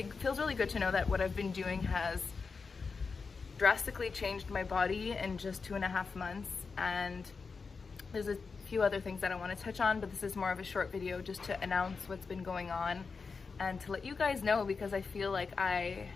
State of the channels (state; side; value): quieter; right; 4.8 dB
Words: feels really good to know that what I've been doing has drastically changed my body in just 2.5 months. And there's a few other things that I want to touch on, but this is more of a short video just to announce what's been going on and to let you guys know, because I feel like I